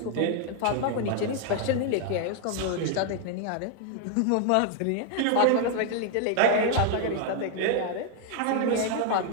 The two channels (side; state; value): both; different; correlation 0.00